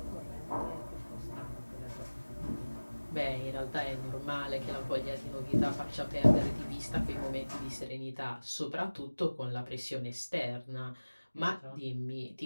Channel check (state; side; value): inverted; both; correlation -1.00